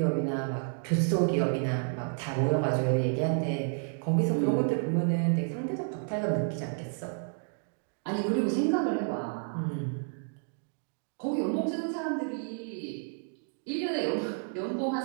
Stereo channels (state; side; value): silent; left; 57 dB below the other